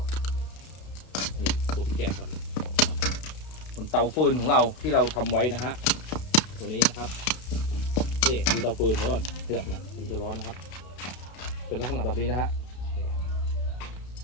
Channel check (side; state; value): right; late; 32 ms